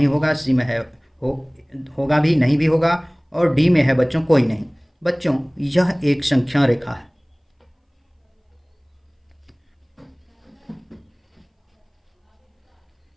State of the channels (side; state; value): both; identical; correlation 1.00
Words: होगा, सी में है होगा भी, नहीं भी होगा, और डी में है बच्चों कोई नहीं। बच्चों यह एक संख्या रेखा है।